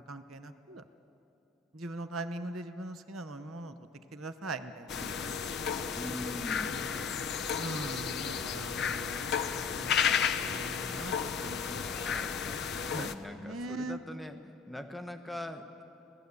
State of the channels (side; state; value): right; quieter; 4.9 dB